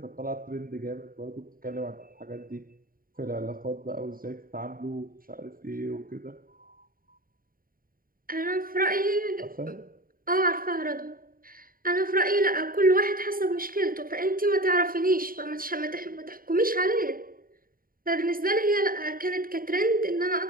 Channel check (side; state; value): left; late; 0.41 ms